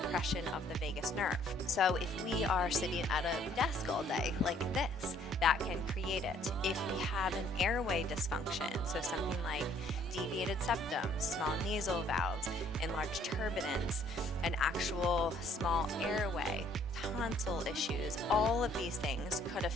of the vagus nerve. So if we are sitting at a desk all day like this, that can create it. If we have an airway dysfunction, so something like deviated septum, small nasal valves, enlarged turbinates, an actual small airway, tonsil issues, all of these things could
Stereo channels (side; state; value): both; normal; correlation 0.61